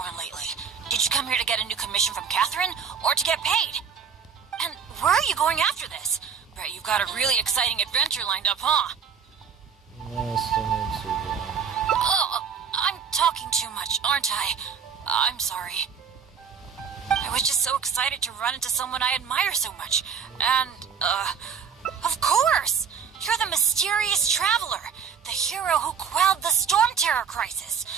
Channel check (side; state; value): left; quieter; 6.8 dB